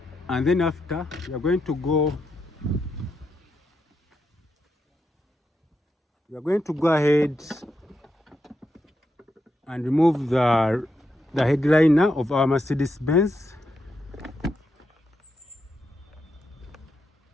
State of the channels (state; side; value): normal; both; correlation 0.84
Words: and then after we are going to go ahead and remove the headliner of our Mercedes-Benz